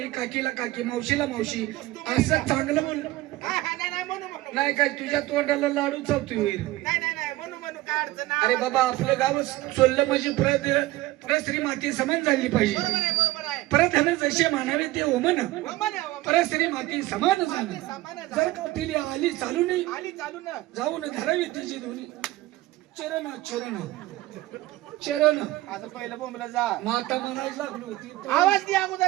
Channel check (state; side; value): quieter; left; 17.8 dB